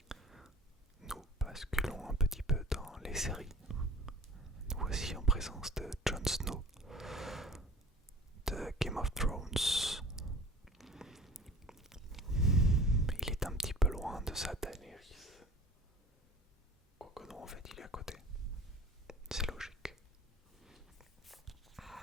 Nous basculons un petit peu dans les séries. Nous voici en présence de Jon Snow de Game of Thrones. Il est un petit peu loin de sa Daenerys. Quoique non, en fait, il est à côté. C'est logique.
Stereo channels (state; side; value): normal; both; correlation 0.44